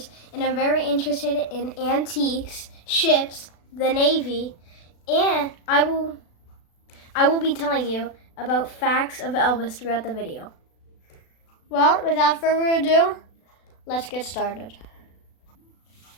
and I'm very interested in antiques, ships, the Navy, and I will be telling you about facts of Elvis throughout the video. Well, without further ado, let's get started.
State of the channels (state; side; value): late; right; 36 ms